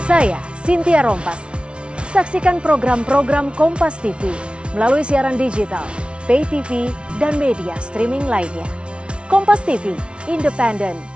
Saya Cynthia Rompas. Saksikan program-program Kompas TV melalui siaran digital, pay TV, dan media streaming lainnya. Kompas TV, independen,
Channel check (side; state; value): left; late; 0.058 ms